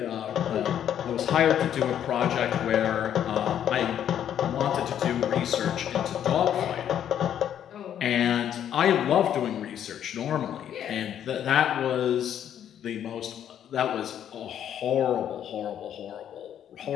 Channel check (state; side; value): quieter; right; 9.9 dB